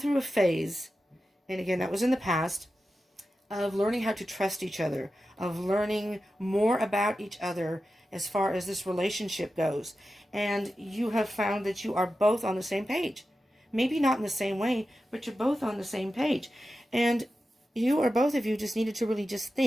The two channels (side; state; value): both; normal; correlation 0.92